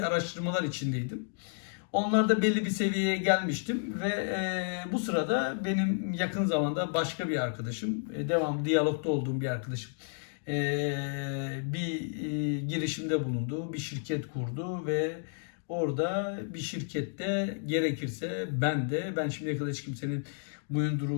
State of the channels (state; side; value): silent; right; digital silence